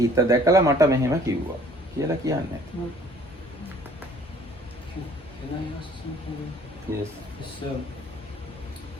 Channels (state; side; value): normal; both; correlation 0.54